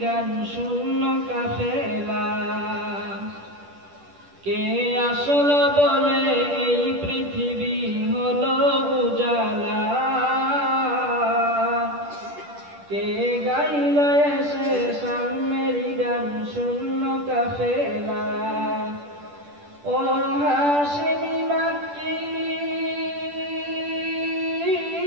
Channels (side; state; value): left; late; 10 ms